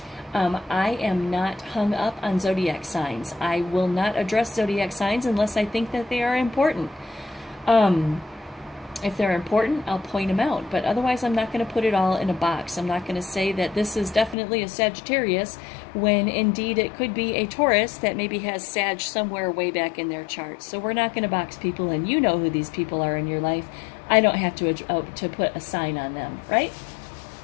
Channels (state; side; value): drops out; right; at 14.4 s